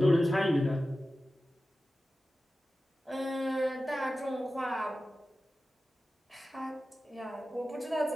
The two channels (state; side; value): normal; both; correlation 0.95